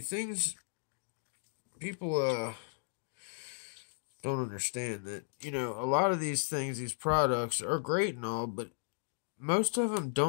people don't understand that, you know, a lot of these things, these products are great and all, but most of them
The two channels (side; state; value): right; silent; digital silence